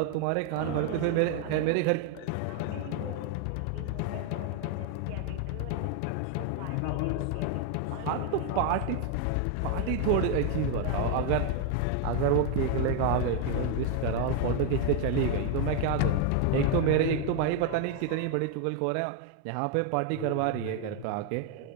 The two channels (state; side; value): different; both; correlation 0.01